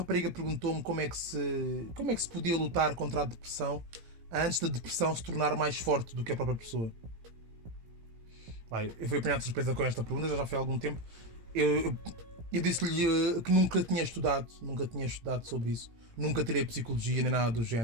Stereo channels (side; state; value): left; late; 17 ms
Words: perguntou-me como é que se podia lutar contra a depressão antes da depressão se tornar mais forte do que a própria pessoa. Eu fui apanhado de surpresa com esta pergunta, já foi há algum tempo. Eu disse-lhe que nunca tinha estudado sobre isso, nunca tirei psicologia nem nada do